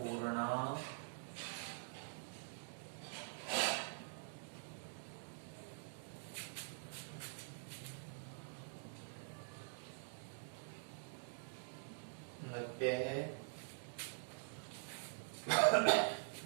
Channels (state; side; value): silent; left; digital silence